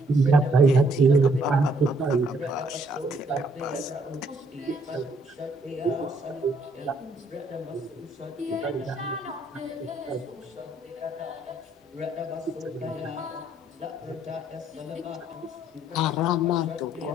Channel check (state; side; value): normal; both; correlation 0.67